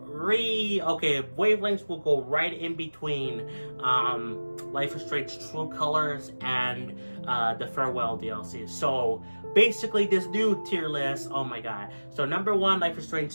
wavelengths will go right in between Life is Strange True Colors and the Farewell DLC. So, basically, this new tier list, oh my god. So, number 1, Life is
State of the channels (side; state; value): both; inverted; correlation -1.00